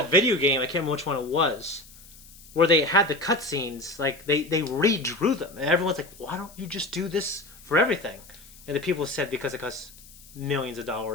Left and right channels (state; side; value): noise; left; hiss, 21 dB below the sound